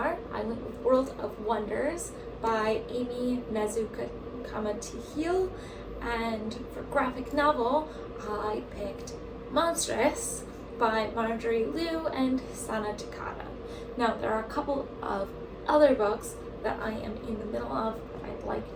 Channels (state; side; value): identical; both; correlation 1.00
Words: I went with World of Wonders by Amy Comma to Heal. And for graphic novel, I picked Monstrous by Marjorie Liu and Sana Takada. Now, there are a couple of other books that I am in the middle of that I'd like